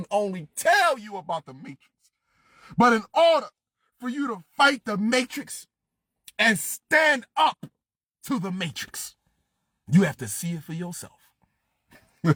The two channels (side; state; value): both; identical; correlation 1.00